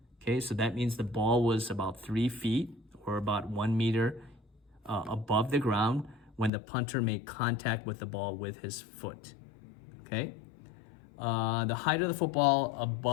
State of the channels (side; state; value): right; drops out; at 6.5 s